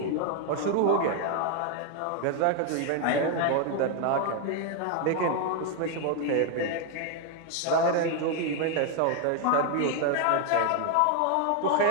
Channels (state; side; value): different; both; correlation 0.01